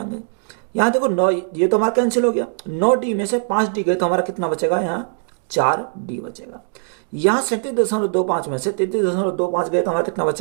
यहाँ देखो 9 ये तो हमारा कैंसिल हो गया, 9D में से 5D गए तो हमारा कितना बचेगा, यहाँ 4D बचेगा। यहाँ 37.25 में से 33.25 गए तो हमारा कितना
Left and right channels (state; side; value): silent; left; digital silence